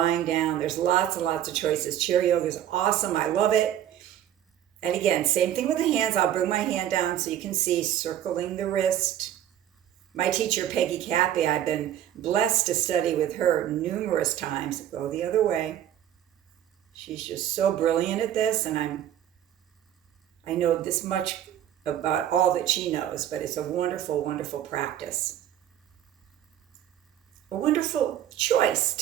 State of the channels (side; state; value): left; quieter; 11.3 dB